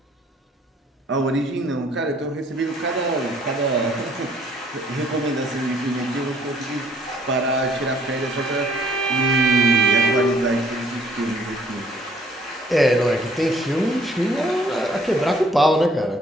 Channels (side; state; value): both; normal; correlation 0.61